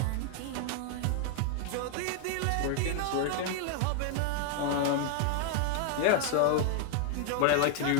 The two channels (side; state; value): both; different; correlation 0.00